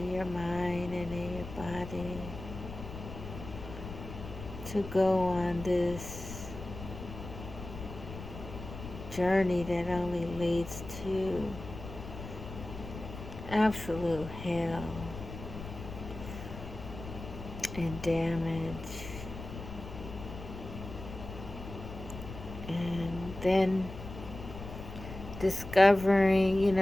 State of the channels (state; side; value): noise; left; rumble, 11 dB below the sound